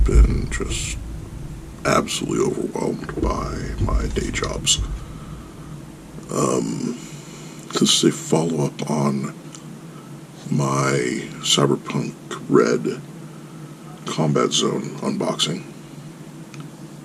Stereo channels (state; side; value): identical; both; correlation 1.00